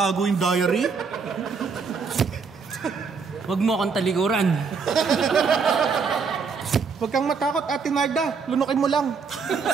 yung diary. Huwag mo akong talikuran. Huwag kang matakot, Ate Narda. Lunukin mo lang.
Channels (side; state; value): left; quieter; 5.3 dB